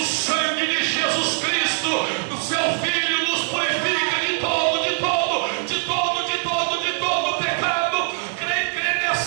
sangue de Jesus Cristo, o seu Filho, nos purifica de todo, de todo, de todo, de todo, de todo pecado. Crê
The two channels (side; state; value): left; silent; 64 dB below the other